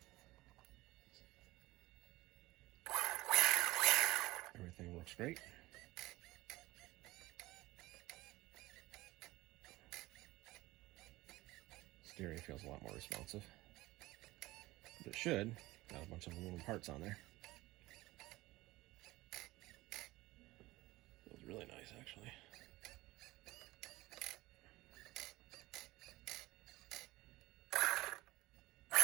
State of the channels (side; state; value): left; quieter; 19.0 dB